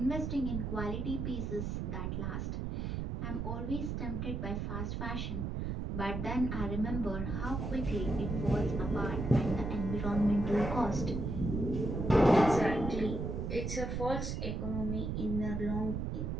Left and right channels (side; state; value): right; noise; rumble, 2 dB below the sound